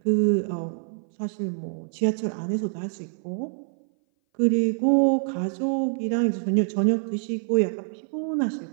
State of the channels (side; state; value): left; silent; 59 dB below the other